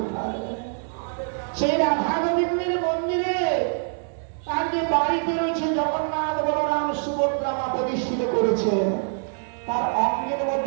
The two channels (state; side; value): silent; left; digital silence